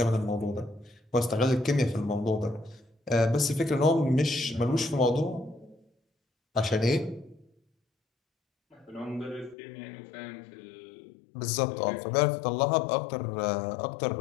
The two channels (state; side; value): drops out; right; at 9.6 s